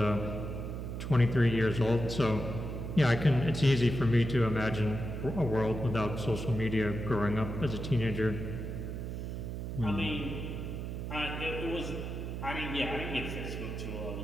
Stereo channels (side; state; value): right; noise; hum, 5 dB below the sound